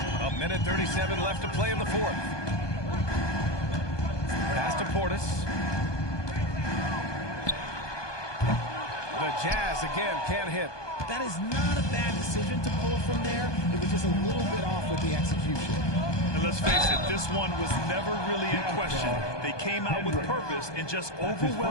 A minute 37 left to play in the fourth. Pass to Portis. The Jazz again can't hit. That is not a bad decision to pull from there. It was just a little bit off with the execution. And let's face it, this one was never really in question. They came out with purpose and just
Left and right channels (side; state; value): right; late; 1.2 ms